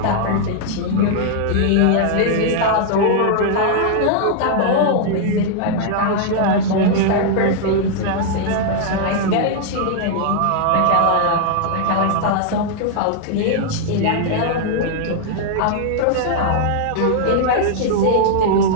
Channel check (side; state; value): both; different; correlation -0.01